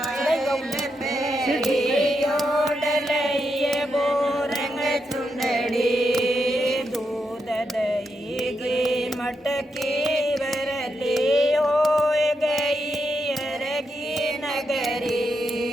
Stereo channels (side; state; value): both; normal; correlation 0.83